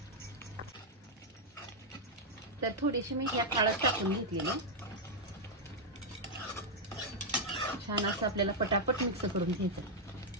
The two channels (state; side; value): normal; both; correlation -0.03